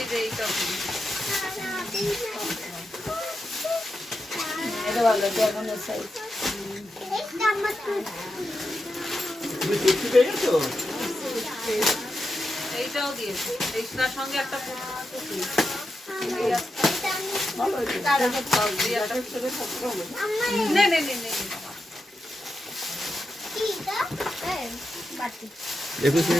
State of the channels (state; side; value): normal; both; correlation 0.88